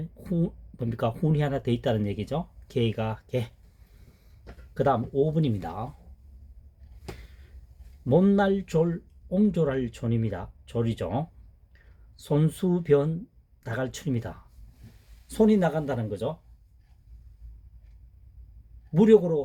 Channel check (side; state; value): both; identical; correlation 1.00